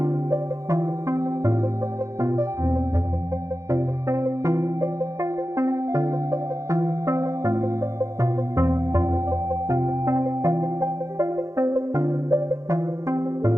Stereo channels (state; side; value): late; left; 0.15 ms